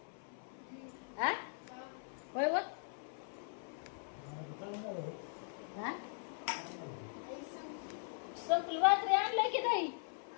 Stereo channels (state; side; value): silent; right; 51 dB below the other